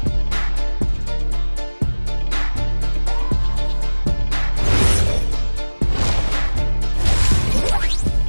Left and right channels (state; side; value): inverted; both; correlation -1.00